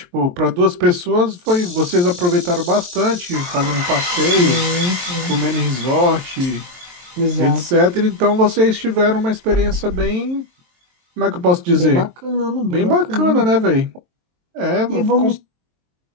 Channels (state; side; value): late; left; 23 ms